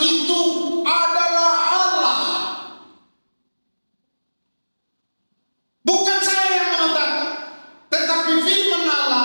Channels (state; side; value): inverted; both; correlation -1.00